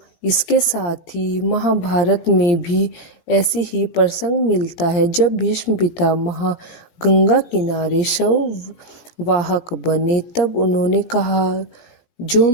इसके साथ ही महाभारत में भी ऐसे ही प्रसंग मिलता है। जब भीष्म पितामह गंगा किनारे शव वाहक बने तब उन्होंने कहा, जो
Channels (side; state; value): right; late; 17 ms